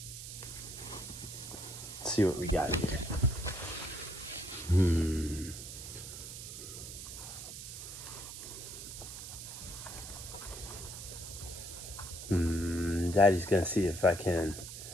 Let's see what we got here. Daddy's gonna see if I can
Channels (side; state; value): right; noise; hiss, 10 dB below the sound